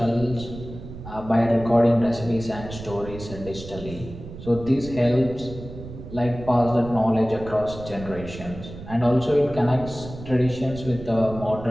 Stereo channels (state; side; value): noise; right; rumble, 12 dB below the sound